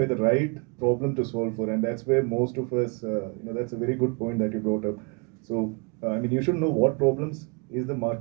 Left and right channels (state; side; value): quieter; left; 31.5 dB